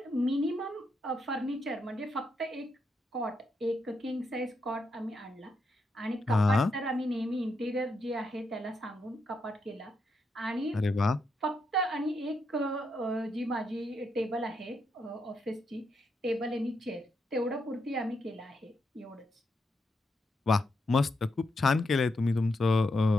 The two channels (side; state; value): both; normal; correlation 0.82